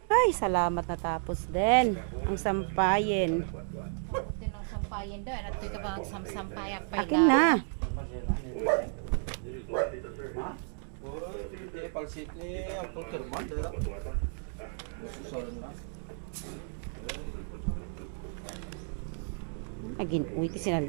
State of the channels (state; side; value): silent; left; 56 dB below the other